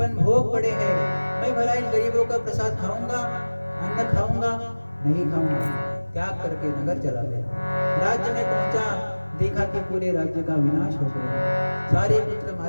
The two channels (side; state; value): both; inverted; correlation -1.00